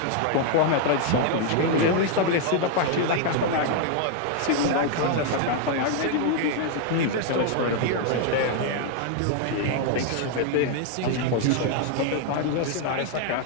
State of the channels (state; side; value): different; both; correlation 0.00